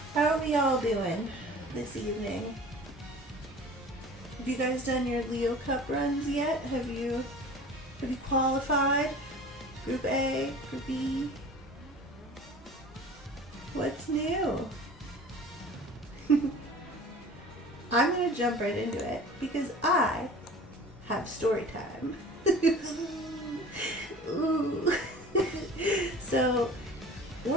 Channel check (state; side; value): normal; both; correlation 0.42